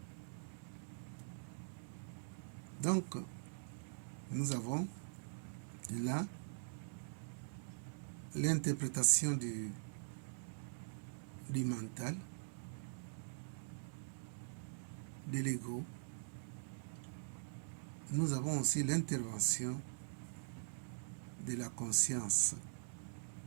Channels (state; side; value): silent; left; digital silence